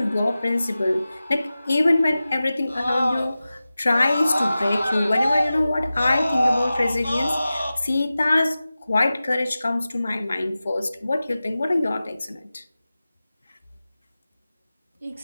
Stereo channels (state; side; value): inverted; both; correlation -0.96